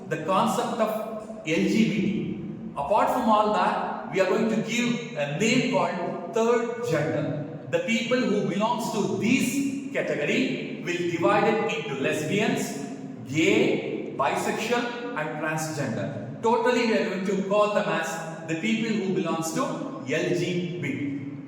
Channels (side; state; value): both; identical; correlation 1.00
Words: the concept of LGBT. Apart from all that, we are going to give a name called third gender. The people who belongs to this category will divide it into lesbians, gay, bisexual and transgender. Totally we are going to call them as the people who belongs to LGBT.